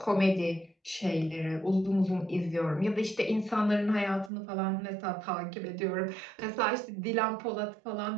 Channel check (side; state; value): left; drops out; at 4.3 s